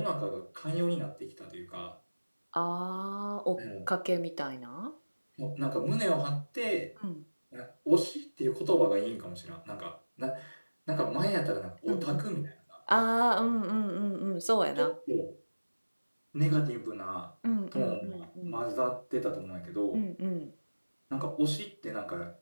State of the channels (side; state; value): both; inverted; correlation -1.00